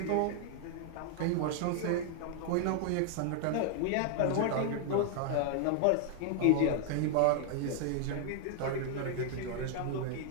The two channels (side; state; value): both; different; correlation 0.00